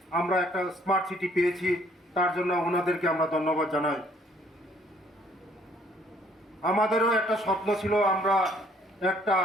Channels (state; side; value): normal; both; correlation 0.62